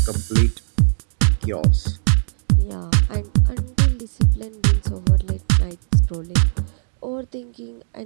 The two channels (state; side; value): silent; left; digital silence